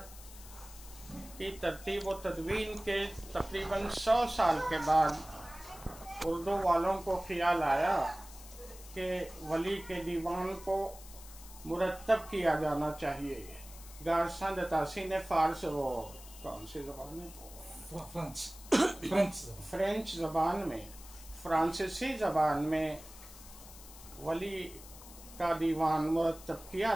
کی ترتیب و تدوین کے تقریباً 100 سال کے بعد اردو والوں کو خیال آیا کہ ولی کے دیوان کو مرتب کیا جانا چاہیے۔ گارساں دتاسی نے کون سی زبان میں؟ فرینچ زبان میں، فرانسیسی زبان میں ولی کا دیوان مرتب کیا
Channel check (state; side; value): noise; left; hiss, 17 dB below the sound